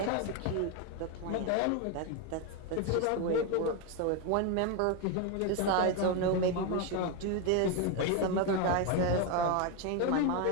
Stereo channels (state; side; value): different; both; correlation 0.02